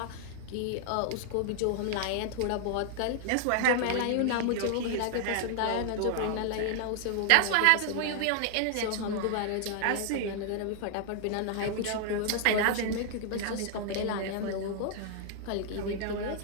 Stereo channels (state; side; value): different; both; correlation 0.00